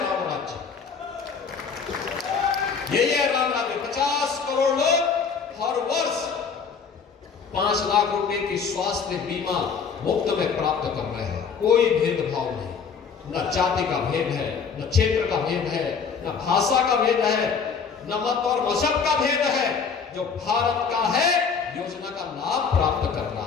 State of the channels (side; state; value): right; quieter; 5.9 dB